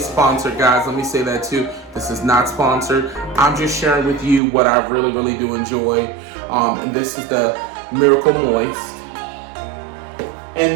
sponsored, guys. Let me say that too. This is not sponsored. I'm just sharing with you what I really, really do enjoy. And this is the Miracle Moist. And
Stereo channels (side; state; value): left; drops out; at 4.4 s